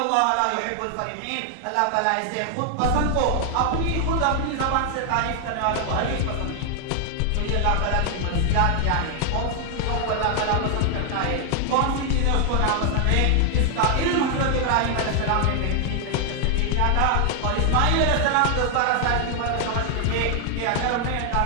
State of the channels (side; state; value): both; different; correlation 0.00